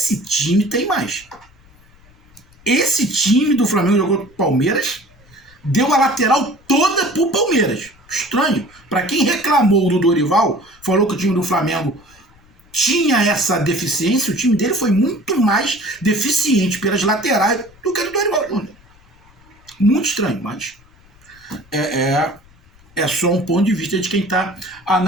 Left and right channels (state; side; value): noise; left; rumble, 28 dB below the sound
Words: time tem mais. Esse time do Flamengo jogou com o Palmeiras, deu a lateral toda pro Palmeiras. Estranho. Para quem reclamou do Dorival, falou que o time do Flamengo tinha essa deficiência, o time dele foi muito mais deficiente pelas laterais do que o do Dorival Júnior. Muito estranho, mas é só um ponto de vista de quem está